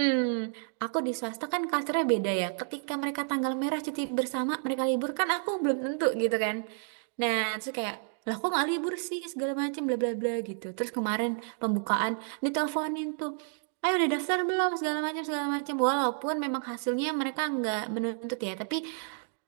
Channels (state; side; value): silent; left; 58 dB below the other